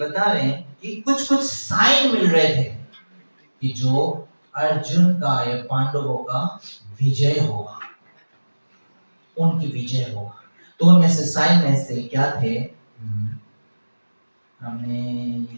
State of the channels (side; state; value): both; inverted; correlation -1.00